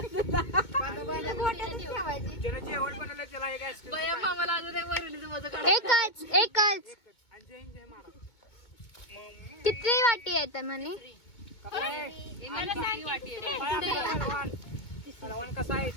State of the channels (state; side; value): late; right; 2.2 ms